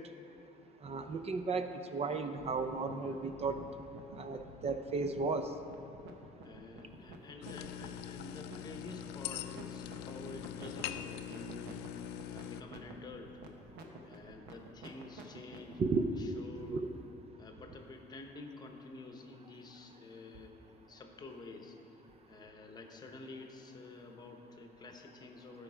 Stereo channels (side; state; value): both; normal; correlation 0.45